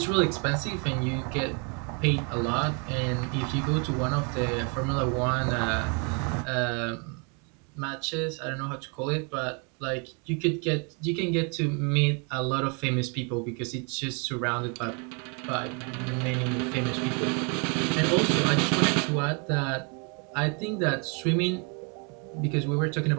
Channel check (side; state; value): left; quieter; 35.3 dB